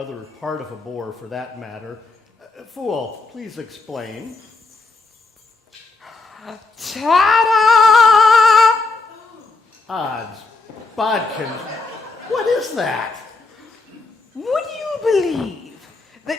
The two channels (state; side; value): quieter; right; 3.7 dB